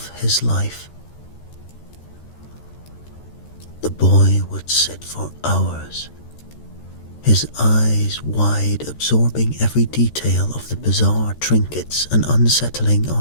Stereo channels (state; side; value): late; right; 13 ms